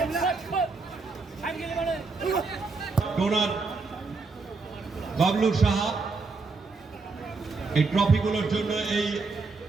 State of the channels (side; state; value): left; quieter; 4.0 dB